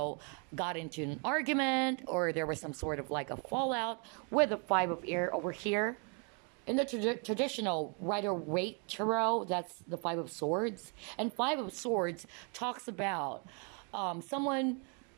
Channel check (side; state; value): left; quieter; 37.6 dB